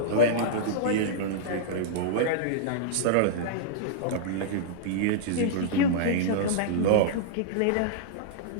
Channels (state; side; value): different; both; correlation -0.02